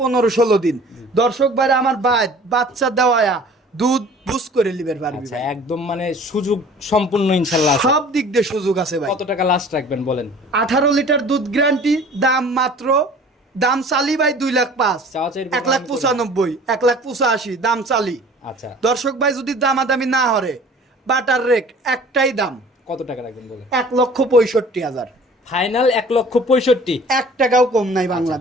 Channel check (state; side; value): normal; both; correlation 0.47